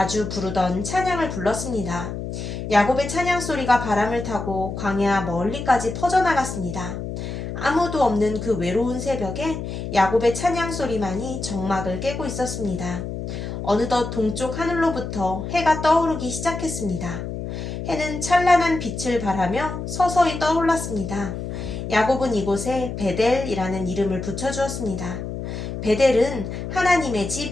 부르던 찬양을 불렀습니다. 야곱의 찬양 소리가 바람을 타고 광야 멀리까지 퍼져나갔습니다. 아무도 없는 그 외로운 새벽에 야곱의 찬양 소리만이 정막을 깨고 있었습니다. 어느덧 동쪽 하늘로부터 해가 떠오르기 시작했습니다. 해는 찬란한 빛을 발하며 서서히 떠올랐습니다. 야곱은 이곳에 베델이라는 이름을 붙여주었습니다. 베델은 하나님의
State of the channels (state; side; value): noise; left; hum, 6 dB below the sound